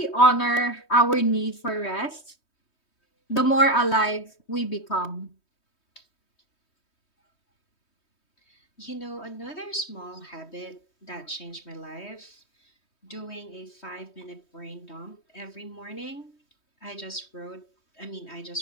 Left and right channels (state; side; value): late; right; 3.2 ms